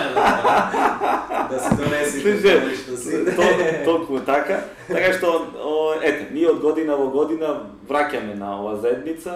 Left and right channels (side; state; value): both; identical; correlation 1.00